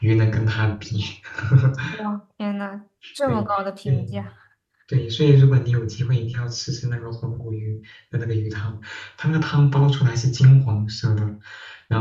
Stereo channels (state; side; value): identical; both; correlation 1.00